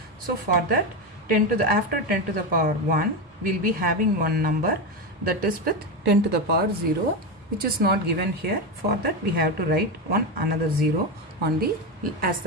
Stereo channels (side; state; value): both; normal; correlation 0.14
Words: So for that, after 10 to the power 1 we will be having one number, that is with 10 to the power 0, which is not given here. For that we have to write another 0 on the as